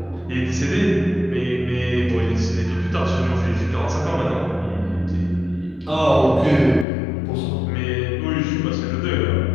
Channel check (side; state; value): right; drops out; at 6.9 s